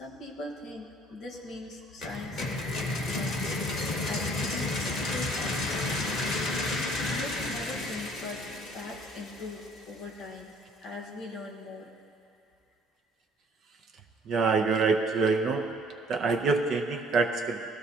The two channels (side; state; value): both; normal; correlation 0.57